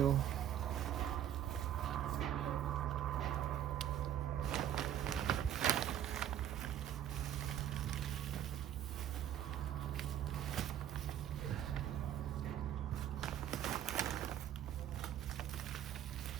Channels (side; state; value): left; quieter; 10.8 dB